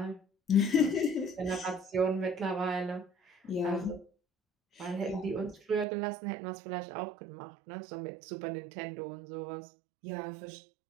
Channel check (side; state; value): left; drops out; at 5.9 s